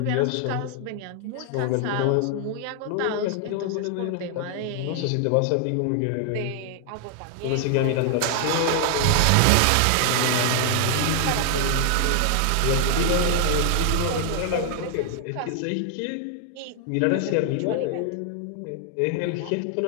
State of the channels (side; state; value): both; different; correlation 0.00